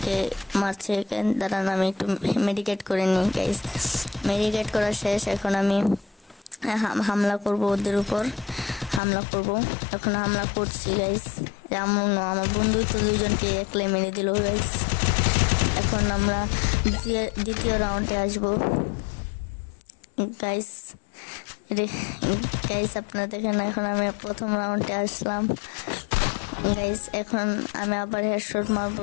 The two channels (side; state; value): right; drops out; at 9.0 s